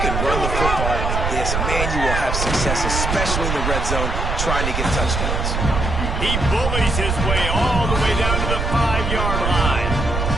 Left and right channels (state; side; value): noise; right; rumble, 1 dB below the sound